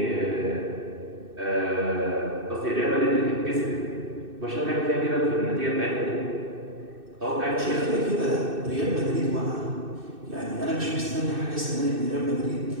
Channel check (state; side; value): late; left; 2.6 ms